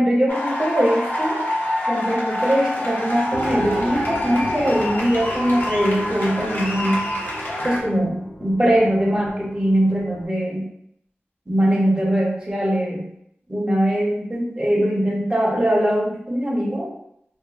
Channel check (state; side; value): normal; both; correlation 0.93